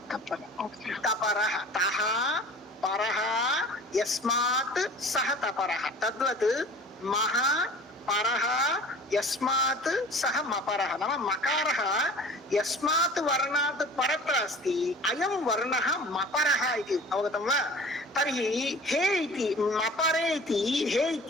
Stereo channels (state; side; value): normal; both; correlation 0.43